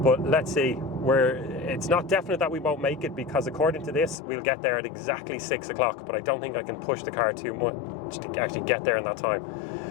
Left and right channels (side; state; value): right; drops out; at 4.2 s